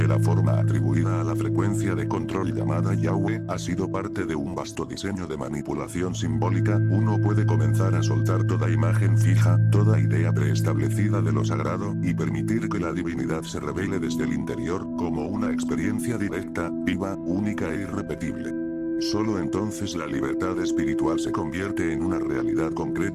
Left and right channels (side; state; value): both; identical; correlation 1.00